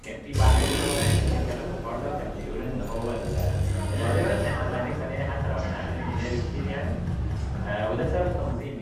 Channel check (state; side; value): identical; both; correlation 1.00